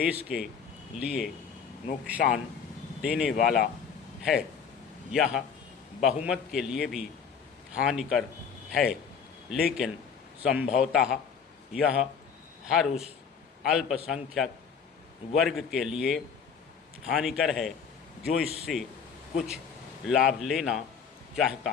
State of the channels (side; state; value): right; quieter; 6.6 dB